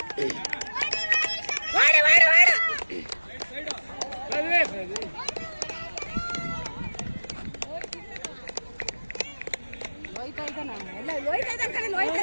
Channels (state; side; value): inverted; both; correlation -1.00